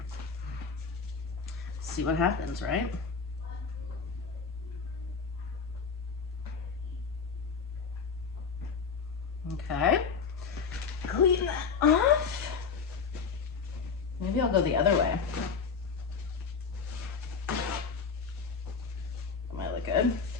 see what happens, right? Okay, clean that off. Maybe I'll go the other way. That might look good.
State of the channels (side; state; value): right; quieter; 5.7 dB